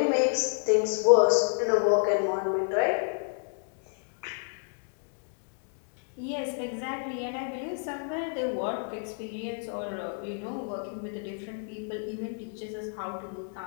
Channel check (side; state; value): right; silent; 58 dB below the other